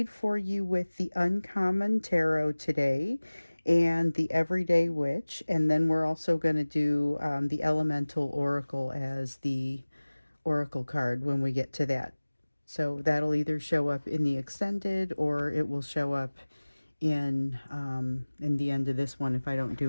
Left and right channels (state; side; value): inverted; both; correlation -1.00